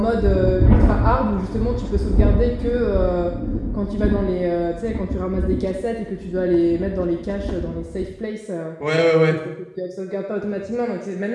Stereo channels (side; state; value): both; identical; correlation 1.00